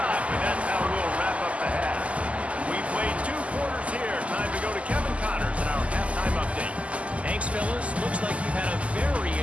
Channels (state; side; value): late; left; 0.064 ms